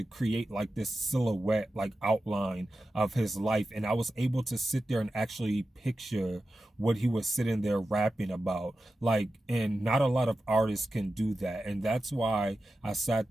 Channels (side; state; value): both; normal; correlation 0.92